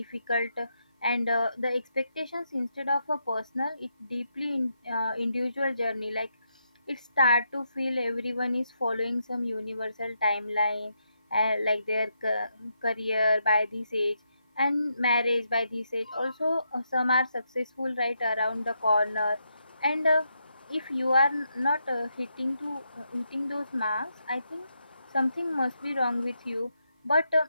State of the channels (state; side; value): inverted; both; correlation -0.81